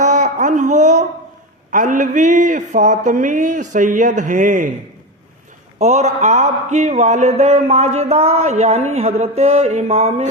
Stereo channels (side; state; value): both; normal; correlation 0.18